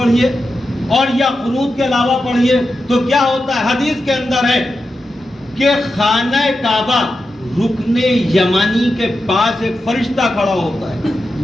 اور یا قنوت کے علاوہ پڑھیے، تو کیا ہوتا ہے؟ حدیث کے اندر ہے کہ خانہ کعبہ رکن یمانی کے پاس ایک فرشتہ کھڑا ہوتا ہے.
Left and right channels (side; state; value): both; normal; correlation 0.89